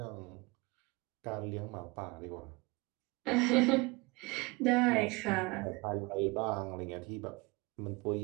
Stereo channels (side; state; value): left; quieter; 25.6 dB